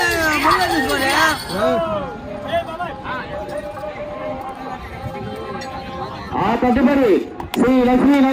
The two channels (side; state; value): both; identical; correlation 1.00